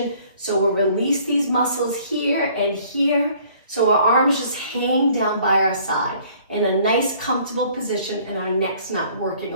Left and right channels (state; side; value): inverted; both; correlation -0.57